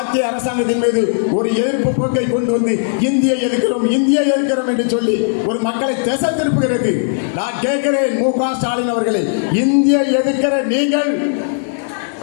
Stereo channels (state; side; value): silent; right; digital silence